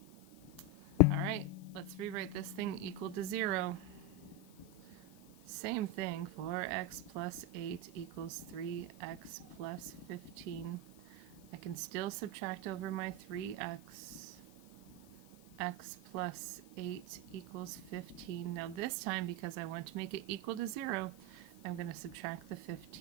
All right, let's rewrite this thing equal to 0. Same thing, 4x plus 8 equals 3x plus 15. I can still subtract over my 3x. X plus 8 equals 15. Now this time, because I want to make it equal to 0, I'm going to subtract the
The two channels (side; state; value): left; noise; hiss, 24 dB below the sound